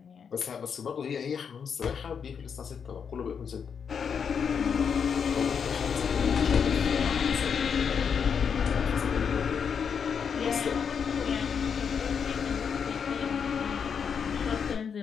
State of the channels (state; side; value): quieter; right; 6.8 dB